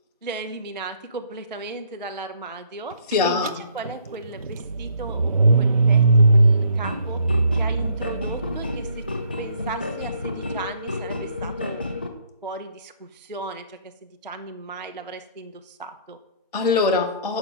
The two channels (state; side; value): inverted; both; correlation -0.64